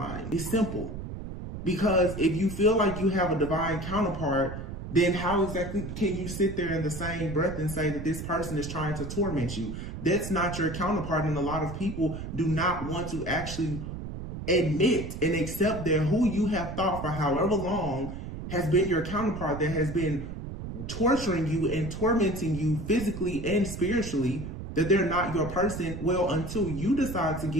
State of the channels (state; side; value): noise; right; rumble, 8 dB below the sound